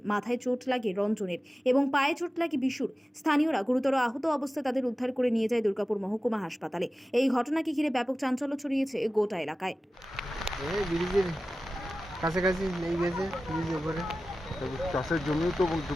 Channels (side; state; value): both; normal; correlation 0.95